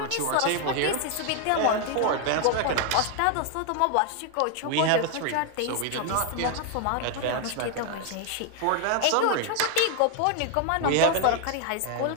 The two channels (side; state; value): both; different; correlation 0.00